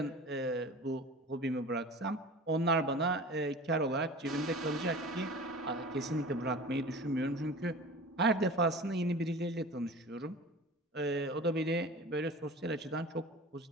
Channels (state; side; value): normal; both; correlation 0.38